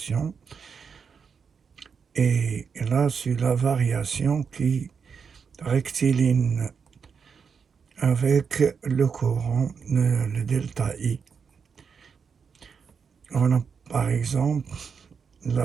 Et là, c'est la variation qui rectiligne avec le courant, le delta I. On a par exemple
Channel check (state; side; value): quieter; left; 6.1 dB